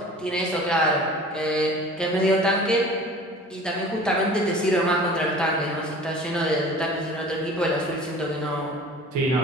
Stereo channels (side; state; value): both; normal; correlation 0.43